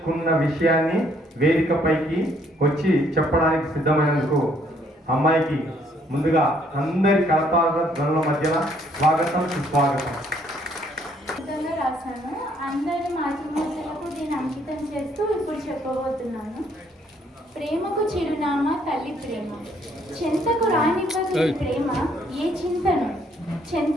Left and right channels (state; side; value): normal; both; correlation 0.66